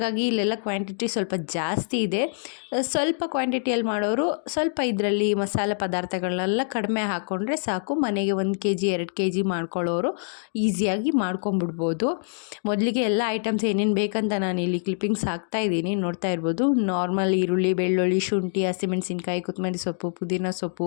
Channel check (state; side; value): silent; right; digital silence